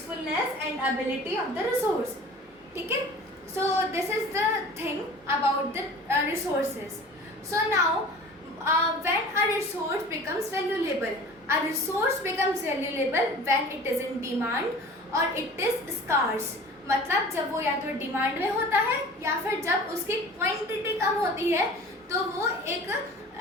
and ability of the resource. Okay? So this is the thing about the resources. So now when a resource becomes valuable when it is in demand or it is scarce. मतलब जब वो या तो demand में होता है या फिर जब उसकी क्वांटिटी कम होती है तो वो एक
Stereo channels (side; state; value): both; normal; correlation 0.42